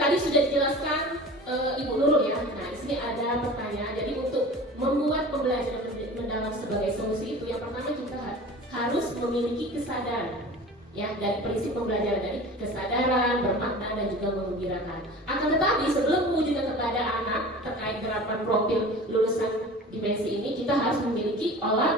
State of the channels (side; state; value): both; normal; correlation 0.38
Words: sudah dijelaskan Ibu Nurul ya. Nah, di sini ada pertanyaan. Jadi untuk membuat pembelajaran mendalam sebagai solusi itu, yang pertama kita harus memiliki kesadaran. Ya, dari prinsip pembelajaran dari kesadaran, bermakna dan juga menggembirakan. Akan tetapi sebelum mewujudkan kepada anak terkait gerakan profil lulusan dimensi ini, kita harus memiliki